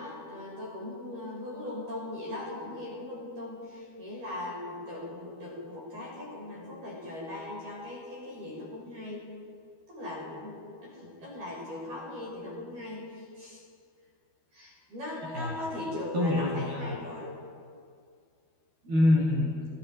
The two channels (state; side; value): late; left; 12 ms